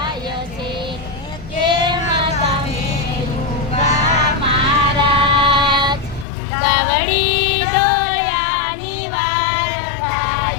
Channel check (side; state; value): right; drops out; at 6.2 s